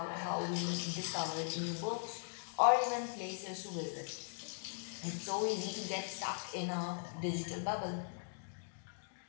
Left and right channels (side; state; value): right; silent; digital silence